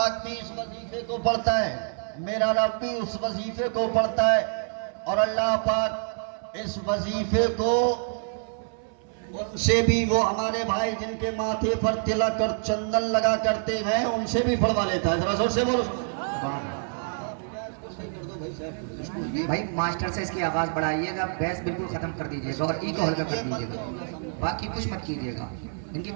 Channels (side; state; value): left; silent; 60 dB below the other